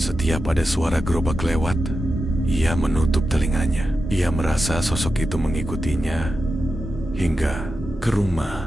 ada suara gerobak lewat, ia menutup telinganya. Ia merasa sosok itu mengikutinya hingga ke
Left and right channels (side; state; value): both; normal; correlation 0.90